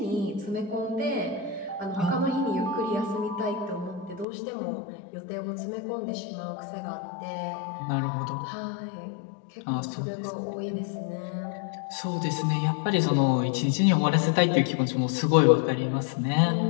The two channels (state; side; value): drops out; right; at 4.2 s